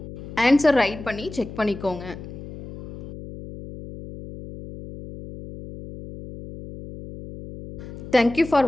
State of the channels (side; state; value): left; noise; hum, 13 dB below the sound